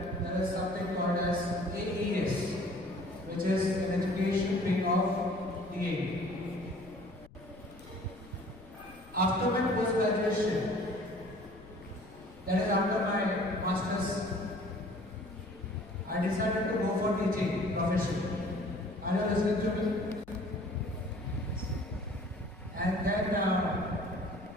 there is something called as AEES, which is an education wing of DA. After my post-graduation, that is after my master's, I decided to go for teaching profession. Are you listening to me? And then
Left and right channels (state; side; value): noise; left; rumble, 22 dB below the sound